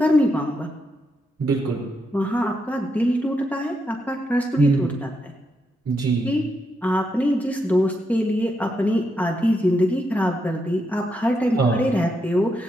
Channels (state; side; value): normal; both; correlation 0.82